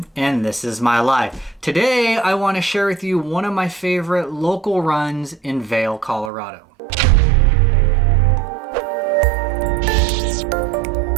and this is my life. Today I want to share with you one of my favorite local runs in Vail, Colorado.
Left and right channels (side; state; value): left; drops out; at 6.3 s